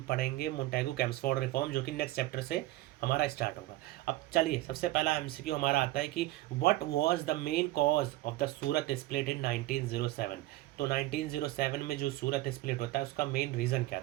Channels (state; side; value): quieter; left; 17.3 dB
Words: पढ़ेंगे मोंटेगू चेम्सफोर्ड रिफॉर्म, जो कि नेक्स्ट चैप्टर से हमारा स्टार्ट होगा। अब चलिए सबसे पहला एमसीक्यू हमारा आता है कि what was the main cause of the Surat split in 1907। तो 1907 में जो सूरत स्प्लिट होता है उसका मेन रीज़न क्या